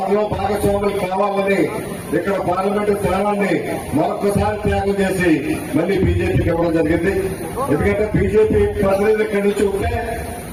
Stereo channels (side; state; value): both; identical; correlation 1.00